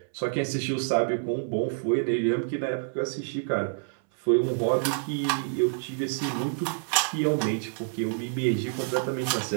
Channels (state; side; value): silent; left; 60 dB below the other